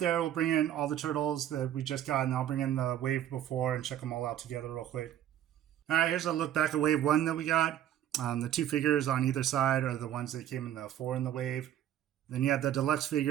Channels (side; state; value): left; quieter; 11.3 dB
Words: We'll bring in all the turtles that we just got, and I'll bring in the wave before and check them all out together real quick. All right, here's a look back at wave 1 that we got. The 2 figures on either side are the ones that came in the 4 in the wave. Then you have the deluxe